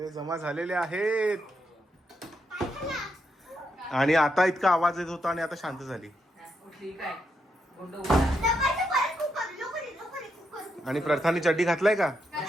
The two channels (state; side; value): normal; both; correlation 0.81